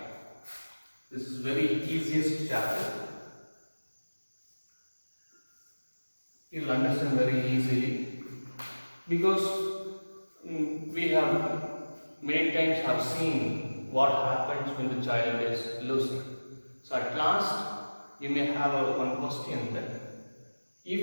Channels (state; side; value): inverted; both; correlation -1.00